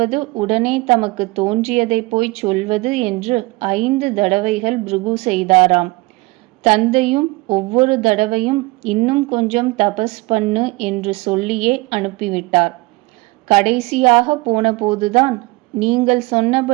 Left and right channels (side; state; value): left; quieter; 23.3 dB